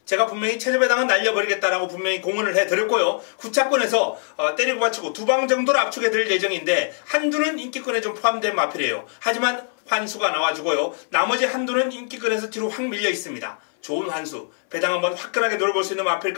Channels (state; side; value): silent; right; 61 dB below the other